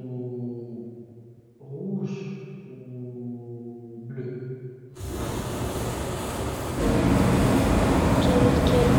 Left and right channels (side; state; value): both; identical; correlation 1.00